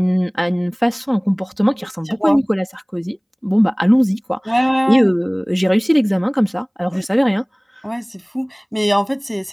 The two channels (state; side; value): identical; both; correlation 1.00